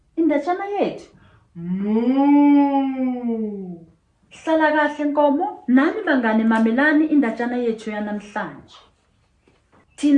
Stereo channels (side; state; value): both; identical; correlation 1.00